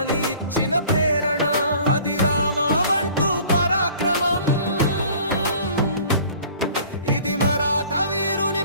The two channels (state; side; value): inverted; both; correlation -0.49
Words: ఇచ్చిన ప్రేరణ అది రామవంటూ పరాక్రమం ఇది మరాఠ వీరుని